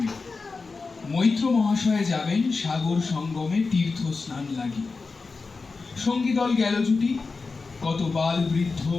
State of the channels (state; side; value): quieter; right; 4.2 dB